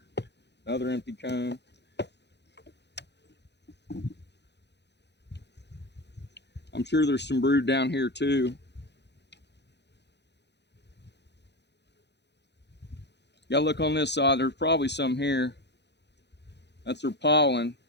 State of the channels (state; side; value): late; right; 0.50 ms